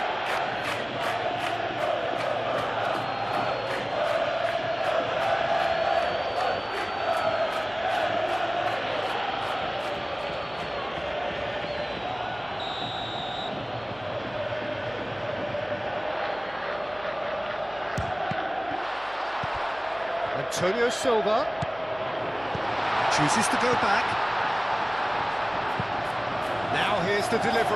Antonio Silva chooses to go back. Now here's the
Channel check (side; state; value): right; noise; hum, 24 dB below the sound